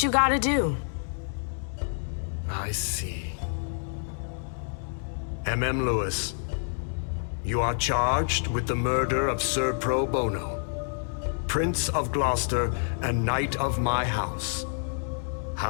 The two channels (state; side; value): silent; right; digital silence